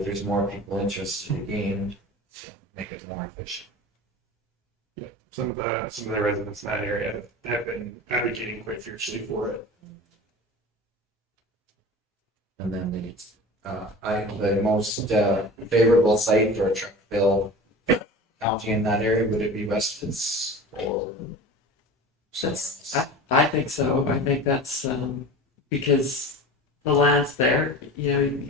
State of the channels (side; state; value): both; normal; correlation 0.35